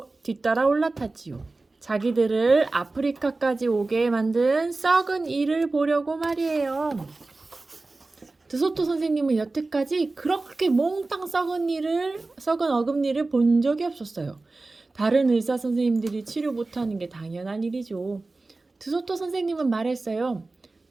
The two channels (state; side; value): quieter; left; 3.4 dB